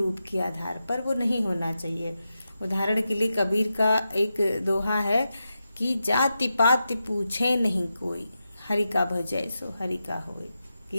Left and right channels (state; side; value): inverted; both; correlation -0.89